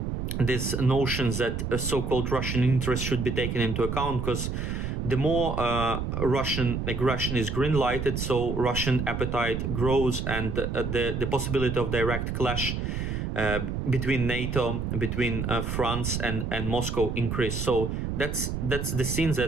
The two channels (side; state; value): right; noise; rumble, 3 dB below the sound